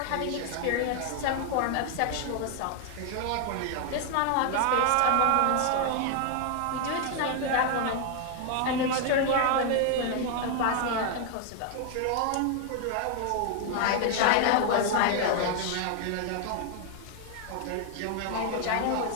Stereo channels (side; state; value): both; different; correlation 0.00